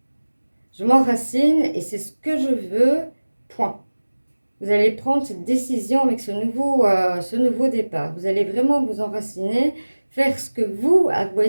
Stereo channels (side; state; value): both; inverted; correlation -1.00